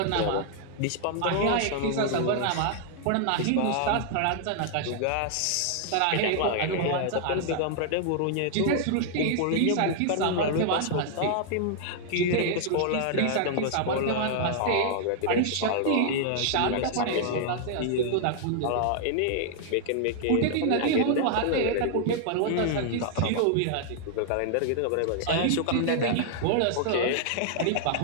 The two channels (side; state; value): both; different; correlation 0.00